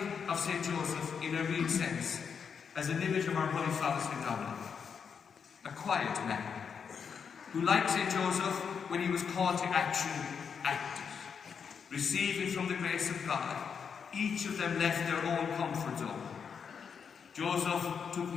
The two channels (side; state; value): right; quieter; 6.6 dB